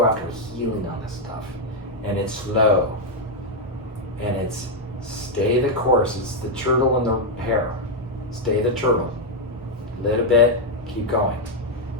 after healing on this stuff. And it's slow. And it's stay the course. It's the turtle in the hair. Stay the turtle. Little bit, keep going.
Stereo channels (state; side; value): noise; right; rumble, 22 dB below the sound